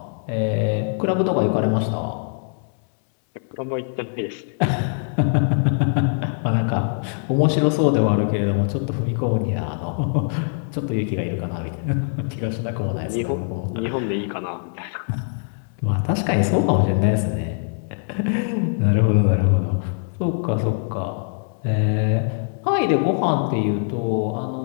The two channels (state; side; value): silent; right; digital silence